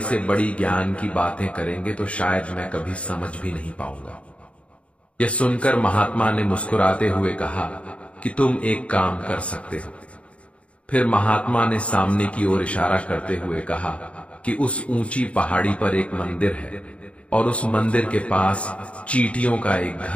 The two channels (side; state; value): right; late; 0.062 ms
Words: से बड़ी ज्ञान की बातें करेंगे तो शायद मैं कभी समझ भी नहीं पाऊंगा। यह सुनकर महात्मा ने मुस्कुराते हुए कहा कि तुम एक काम कर सकते हो। फिर महात्मा ने सामने की ओर इशारा करते हुए कहा कि उस ऊंची पहाड़ी पर एक मंदिर है और उस मंदिर के पास चींटियों का एक